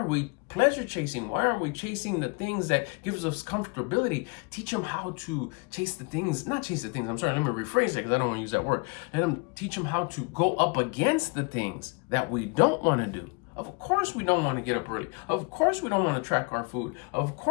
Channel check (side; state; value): right; quieter; 32.3 dB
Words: we pleasure chasing? Why are we chasing the things that gives us comfortability? Teach them how to chase the things, not chase the things. I'm sorry, let me rephrase it because I don't want to use that word. Let them teach them how to go up against the things that we don't want to do. Of course we don't want to get up early. Of course we don't want to track our food. Of